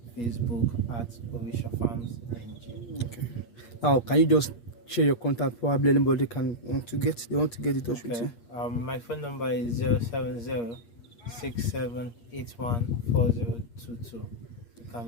Facebook at Orisha Farms NG. Okay. Now, can you just share your contact? Probably anybody want to get in touch with you. My phone number is 070-6781-4022. You can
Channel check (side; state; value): right; late; 8.5 ms